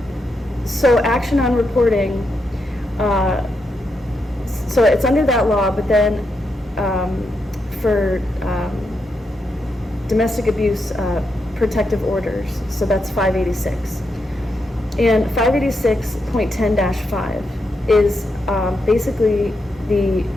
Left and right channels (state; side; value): normal; both; correlation 0.83